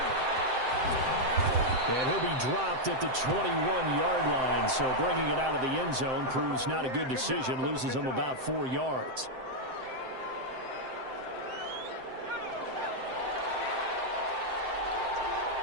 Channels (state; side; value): late; left; 7.7 ms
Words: And he'll be dropped at the 21-yard line, so bringing it out of the end zone proves not a good decision, loses him about 4 yards.